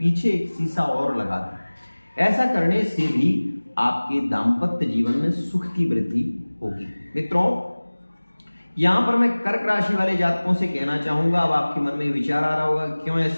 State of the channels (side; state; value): both; inverted; correlation -1.00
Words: एक शीशा और लगा दें। ऐसा करने से भी आपके दाम्पत्य जीवन में सुख की वृद्धि होगी। मित्रों, यहां पर मैं कर्क राशि वाले जातकों से कहना चाहूंगा, अब आपके मन में विचार आ रहा होगा क्यों